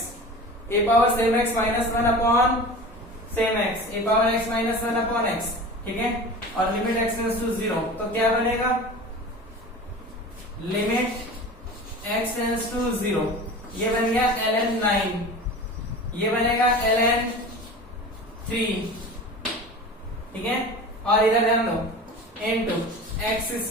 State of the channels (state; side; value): normal; both; correlation 0.35